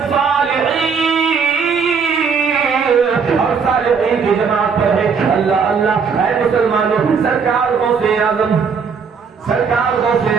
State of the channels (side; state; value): left; quieter; 5.8 dB